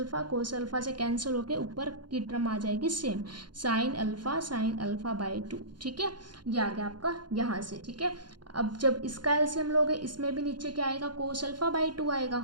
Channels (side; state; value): left; late; 0.71 ms